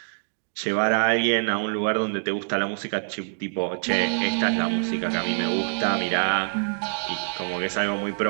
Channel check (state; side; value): silent; left; digital silence